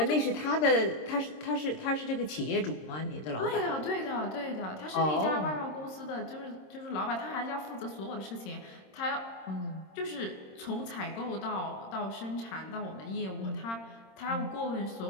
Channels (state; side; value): late; right; 26 ms